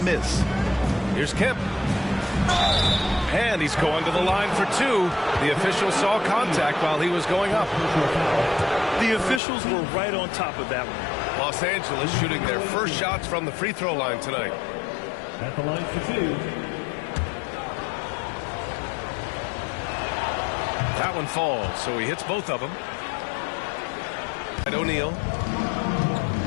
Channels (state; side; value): drops out; right; at 9.4 s